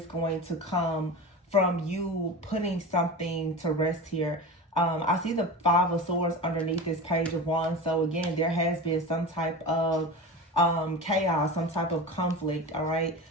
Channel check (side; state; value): both; normal; correlation 0.28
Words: going to come from you putting something to rest here. I see the Five of Swords underneath this Page of Wands. So again, there has been some type of chaos, some type of conflict, all right?